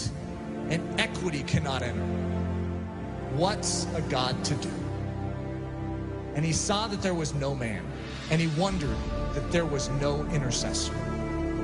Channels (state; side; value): identical; both; correlation 1.00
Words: and equity cannot enter. What's a God to do? And he saw that there was no man, and he wondered that there was no intercessor.